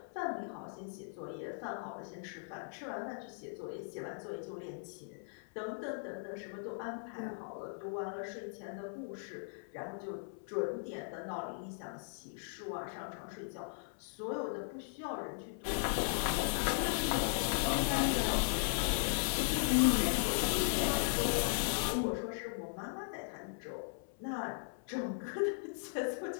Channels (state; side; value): silent; right; 52 dB below the other